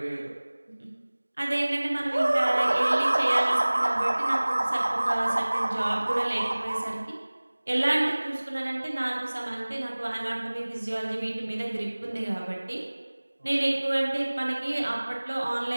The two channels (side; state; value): both; inverted; correlation -1.00